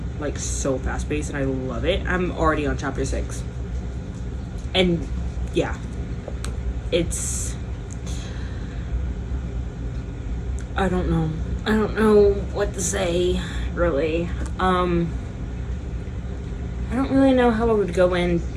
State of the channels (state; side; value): identical; both; correlation 1.00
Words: Like, so fast paced, and I love it. I'm already on chapter 6. And yeah, it's, I don't know what to say, really. I don't really know how I would go in